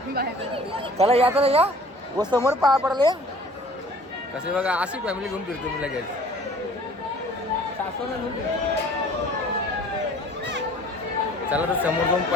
चला या या व समोर पाया पडले कसे बघा. अशी फॅमिली घेऊन फिरतो मी लगेच. सासूला घेऊन चला तर समोर जाऊन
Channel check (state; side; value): normal; both; correlation 0.50